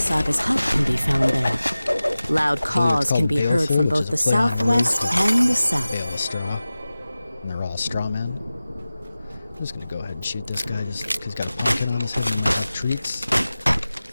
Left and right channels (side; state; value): both; inverted; correlation -0.96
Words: hut can be found there. Loud caws called can be heard Baleful, from which both is the a play on southwest words. and the south. Bale of straw. And they're all straw men. I'm just gonna go ahead and shoot this guy just because he's got a pumpkin on his head and might have treats.